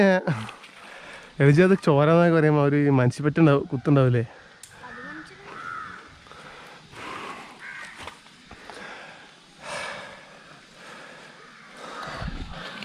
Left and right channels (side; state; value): both; identical; correlation 1.00